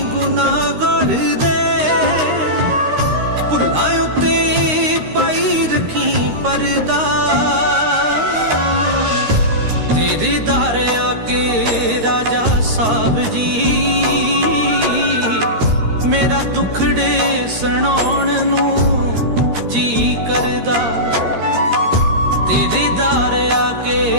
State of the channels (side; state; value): left; late; 13 ms